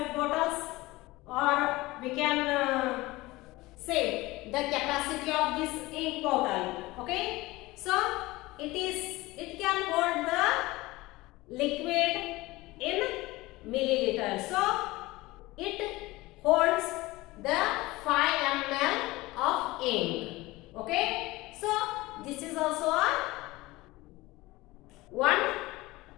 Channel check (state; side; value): quieter; right; 20.1 dB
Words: bottles, or we can say the capacity of this ink bottle. Okay, so it can hold the liquid in milliliters. So it holds the 5 ml of ink. Okay, so this is also a one